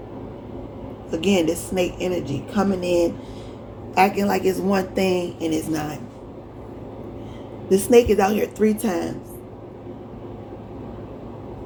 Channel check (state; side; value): identical; both; correlation 1.00